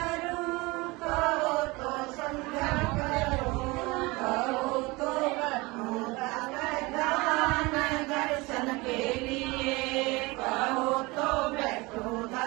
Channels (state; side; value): quieter; left; 23.8 dB